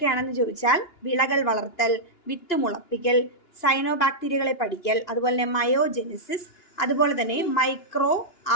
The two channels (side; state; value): right; late; 2.9 ms